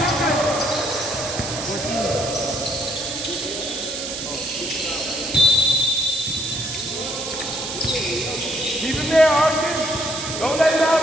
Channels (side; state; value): right; noise; hiss, 6 dB below the sound